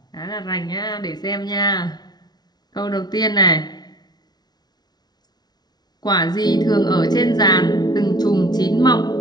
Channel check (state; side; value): late; right; 0.19 ms